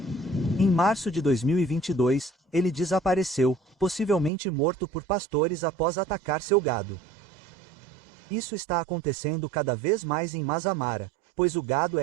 Em março de 2022, ele desapareceu, possivelmente morto por pastores após atacar seu gado. Isso está acontecendo cada vez mais em Mazamara, pois o gado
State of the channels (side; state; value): left; drops out; at 4.3 s